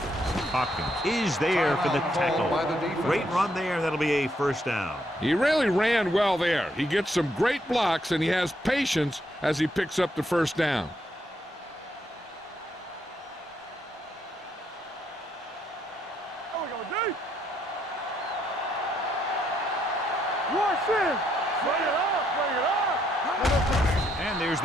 Hopkins is there for the tackle. Great run there. That'll be a first down. He really ran well there. He gets some great blocks, and he has patience as he picks up the first down. go, D. Rush in. Bring it up, bring it up. And there's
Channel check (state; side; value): normal; both; correlation 0.74